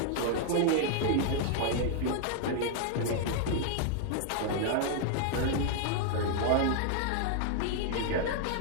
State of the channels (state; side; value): different; both; correlation 0.00